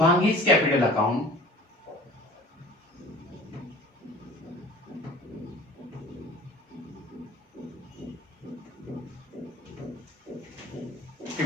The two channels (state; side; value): normal; both; correlation 0.45